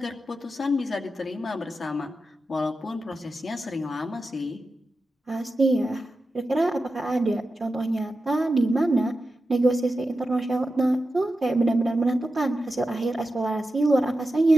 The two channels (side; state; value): both; normal; correlation 0.91